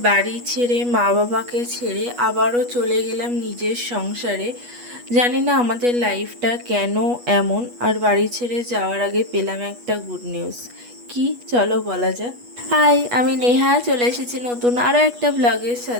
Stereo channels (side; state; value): left; late; 8.3 ms